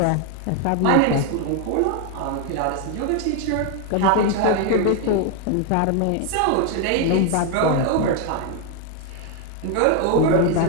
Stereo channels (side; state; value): both; different; correlation 0.01